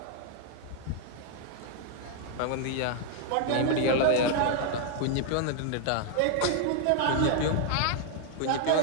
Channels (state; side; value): different; both; correlation 0.00